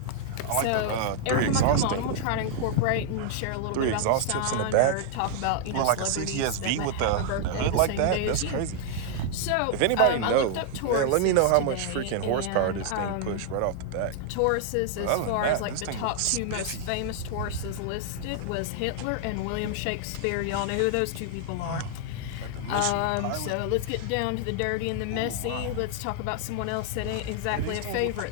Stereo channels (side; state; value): both; different; correlation 0.00